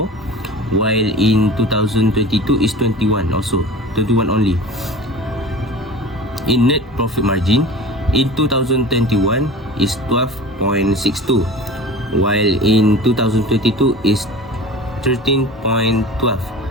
while in 2022 is 21 only. In net profit margin in 2021 is 12.62 while in 2022 is 13.12.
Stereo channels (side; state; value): both; normal; correlation 0.36